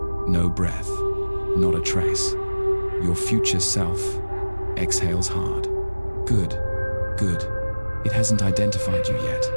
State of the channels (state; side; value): inverted; both; correlation -1.00